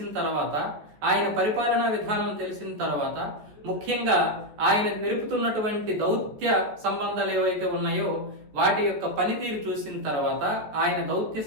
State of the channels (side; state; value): left; late; 14 ms